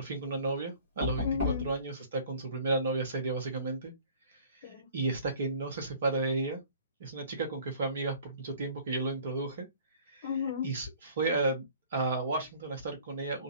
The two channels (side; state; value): both; inverted; correlation -0.51